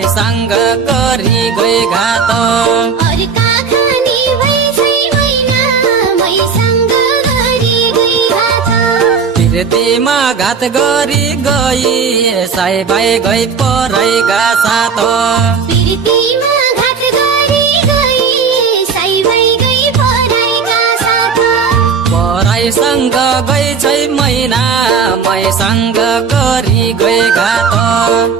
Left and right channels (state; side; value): quieter; left; 5.8 dB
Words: गरी गए घात अर्का खानी भैछै मैना मैसँग गरी गई घात प्रीतिमा घात गरी गई साई भाइ गई परैका साथ प्रीतिमा घात गरी गई साई भाइ गई परैका साथ परैसँग गई छै मैना मैसँग गरी गए घात